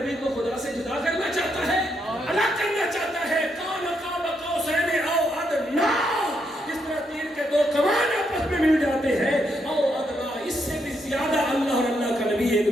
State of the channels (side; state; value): both; normal; correlation 0.78